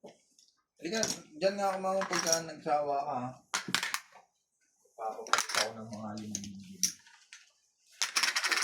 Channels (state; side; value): identical; both; correlation 1.00